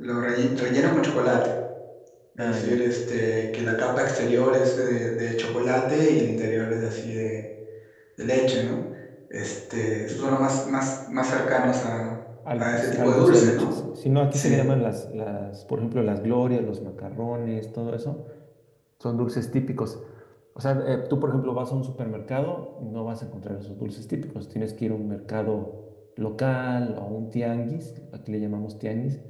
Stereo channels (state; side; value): identical; both; correlation 1.00